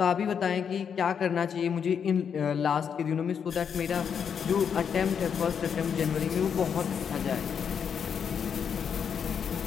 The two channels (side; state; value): right; quieter; 7.3 dB